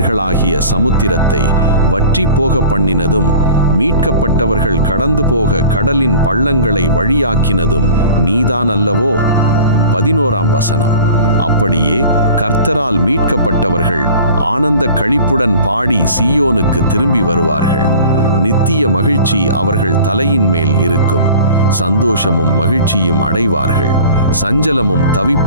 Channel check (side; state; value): both; inverted; correlation -0.44